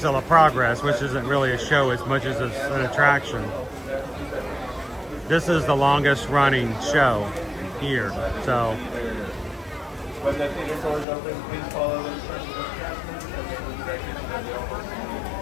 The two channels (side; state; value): right; drops out; at 11.1 s